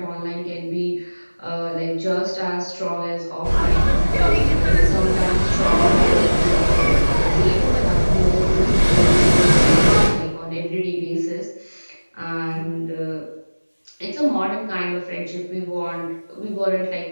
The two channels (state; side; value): inverted; both; correlation -1.00